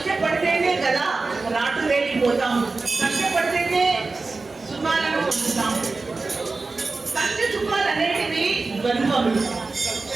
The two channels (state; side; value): quieter; left; 3.7 dB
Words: కదా రాటు వేలిపోతాము, కష్టపడితేనే సుఖాలను పొందుతాము. కష్ట సుఖాలు అనేటివి ద్వంద్వములు,